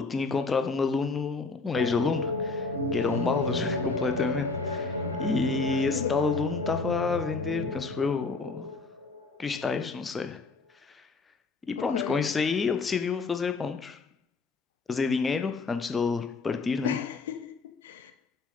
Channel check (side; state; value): right; quieter; 4.0 dB